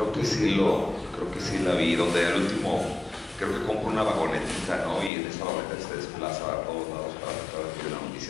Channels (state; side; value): drops out; right; at 5.1 s